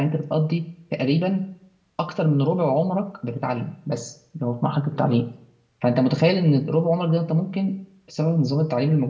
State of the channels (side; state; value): both; identical; correlation 1.00